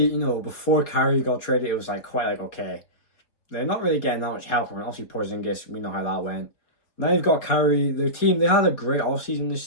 before Kyrie got traded, it was okay, they're not really getting that much help from it. Obviously, Porzingis, we know how that went. Now you've got Kyrie, their team, they had a great offseason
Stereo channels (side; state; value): right; late; 4.1 ms